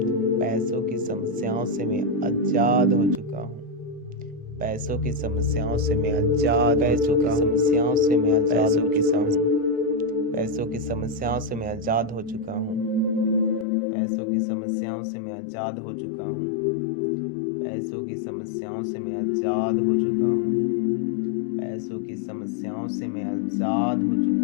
पैसों की समस्याओं से मैं आज़ाद हो चुका हूँ। पैसों की समस्याओं से मैं आज़ाद हो चुका हूँ। समस्याओं से मैं आज़ाद हो चुका हूँ। पैसों की समस्याओं से मैं आज़ाद हो चुका हूँ। पैसों की समस्याओं से मैं आज़ाद हो चुका हूँ। पैसों की समस्याओं से मैं आज़ाद हो चुका हूँ। पैसों की समस्याओं से मैं आज़ाद हो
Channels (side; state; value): right; drops out; at 13.7 s